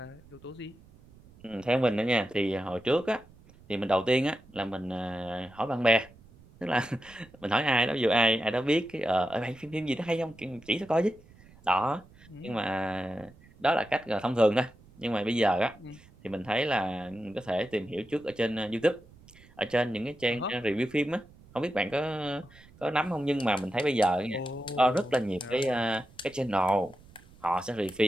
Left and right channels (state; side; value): noise; right; rumble, 25 dB below the sound